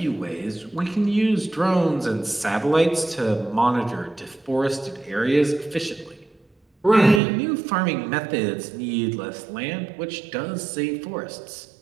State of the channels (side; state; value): left; drops out; at 7.2 s